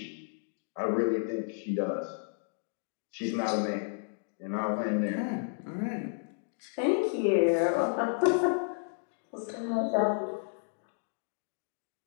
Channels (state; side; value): silent; right; 56 dB below the other